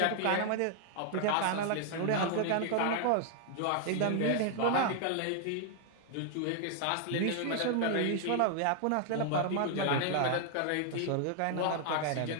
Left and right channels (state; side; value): different; both; correlation 0.00